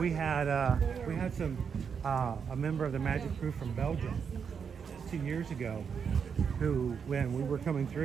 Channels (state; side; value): quieter; left; 6.6 dB